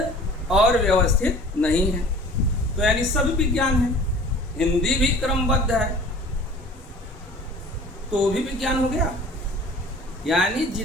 और व्यवस्थित नहीं है। तो यानी सभी विज्ञान है। हिंदी भी क्रमबद्ध है तो भी विज्ञान हो गया। यानी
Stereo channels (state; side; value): normal; both; correlation 0.45